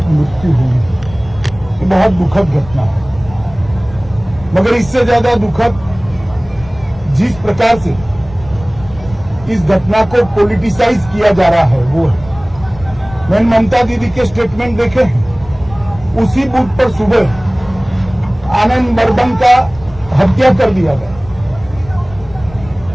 मृत्यु हुई। ये बहुत दुखद घटना है, मगर इससे ज्यादा दुखद जिस प्रकार से इस घटना को पॉलिटिसाइज किया जा रहा है वो है। मैंने ममता दीदी के स्टेटमेंट देखे हैं। उसी बूथ पर सुबह आनंद बर्मन का हत्या कर दिया गया,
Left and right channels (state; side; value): noise; left; rumble, 18 dB below the sound